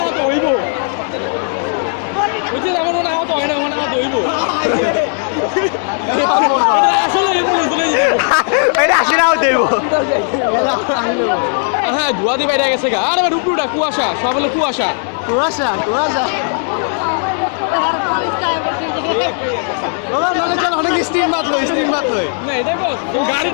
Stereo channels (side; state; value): right; silent; 58 dB below the other